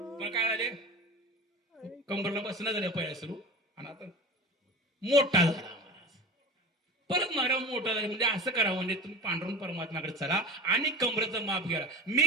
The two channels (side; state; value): both; normal; correlation 0.32